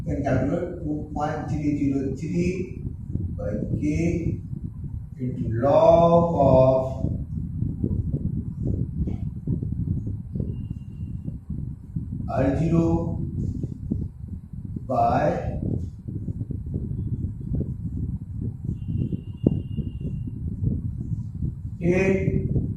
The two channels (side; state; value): both; identical; correlation 1.00